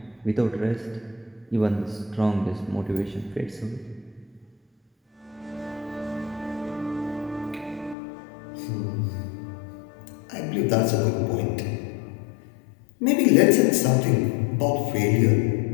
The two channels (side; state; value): right; drops out; at 8.0 s